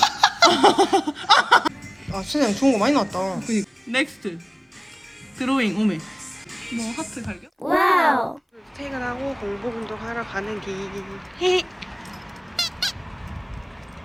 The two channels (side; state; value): both; identical; correlation 1.00